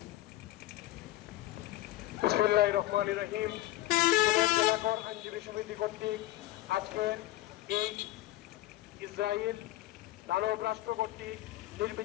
বিসমিল্লাহির রহমানির রহিম। সিলেট জেলা কোর আইনজীবী সমিতি কর্তৃক আজকের এই ইসরায়েল দানব রাষ্ট্র কর্তৃক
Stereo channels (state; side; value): quieter; right; 16.5 dB